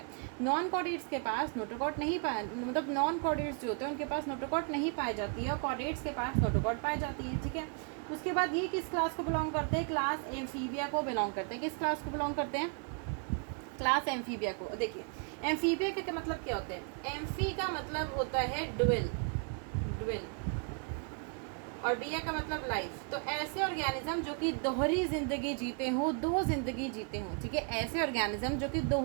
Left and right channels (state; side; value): quieter; left; 39.4 dB